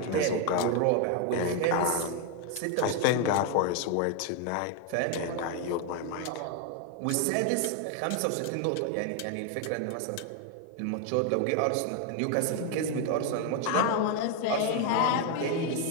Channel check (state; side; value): different; both; correlation 0.01